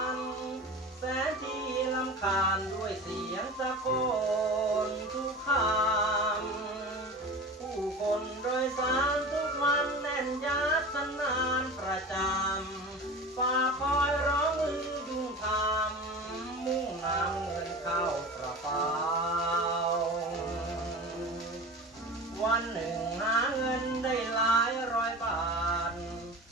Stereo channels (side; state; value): both; normal; correlation 0.33